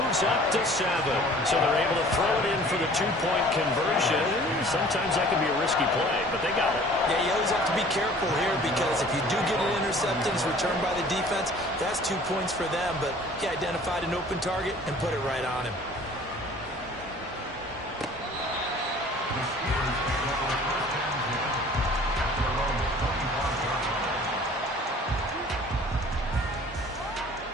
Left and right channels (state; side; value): normal; both; correlation 0.50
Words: up to 7. So they're able to throw it in for the 2-point conversion. Sometimes that can be a risky play, but they got it. Yeah, you always have to be careful here because if you do get an interception, it's returned by the defense, that's 2 points for them. But he identified an open target and put it right on him.